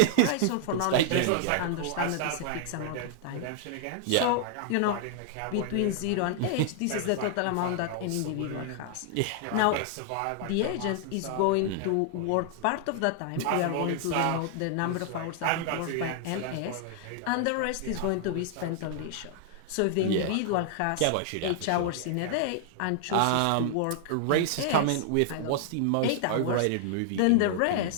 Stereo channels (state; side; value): different; both; correlation 0.00